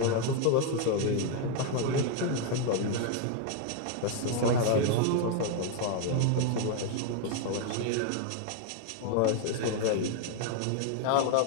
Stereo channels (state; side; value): different; both; correlation 0.00